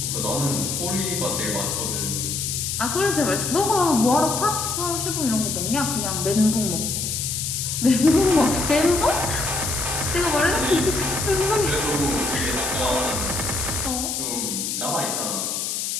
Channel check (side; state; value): left; noise; hiss, 2 dB below the sound